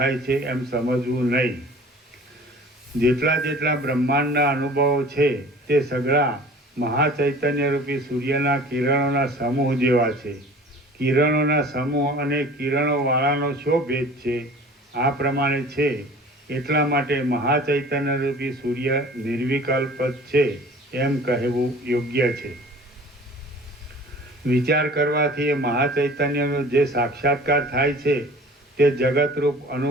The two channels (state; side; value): normal; both; correlation 0.45